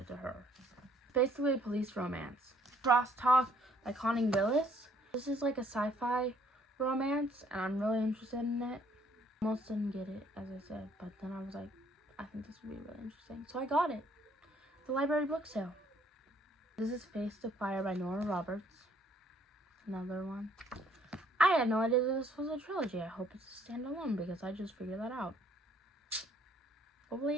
to her. Basically a police romance. Crosstalk by Connie Willis. This is like a sci-fi romance, and I'm really interested in it. Almost didn't get it, as I said, but then I was like, I think this would be really interesting. So I got it. The library book sale. This is Face to Fire by Nora Roberts. Another one. I had no idea this was a trilogy. I hope it's a standalone because I just figured that out. Hopefully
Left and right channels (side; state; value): both; normal; correlation 0.63